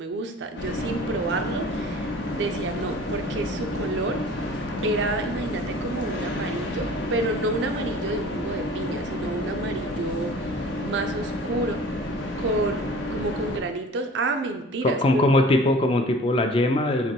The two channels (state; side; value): normal; both; correlation 0.45